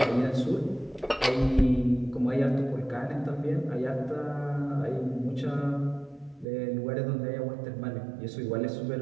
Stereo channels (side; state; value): left; drops out; at 6.5 s